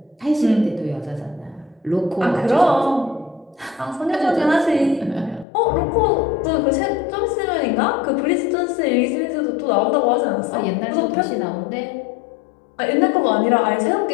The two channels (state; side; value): drops out; right; at 5.5 s